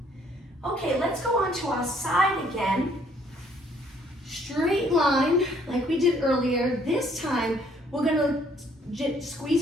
Okay, let's go on to our side again. Straight line, like we did earlier. This time, we're gonna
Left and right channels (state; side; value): normal; both; correlation 0.63